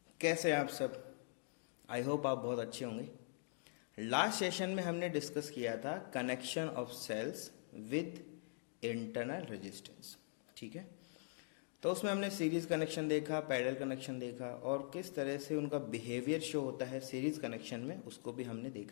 कैसे हैं आप सब। आई होप आप बहुत अच्छे होंगे। लास्ट सेशन में हमने डिस्कस किया था connection of cells with internal resistance. ठीक है, तो उसमें हमने सीरीज कनेक्शन देखा, पैरेलल कनेक्शन देखा और किस तरह से उनका बिहेवियर शो होता है सीरीज कनेक्शन में, उसको भी हमने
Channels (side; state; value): right; silent; digital silence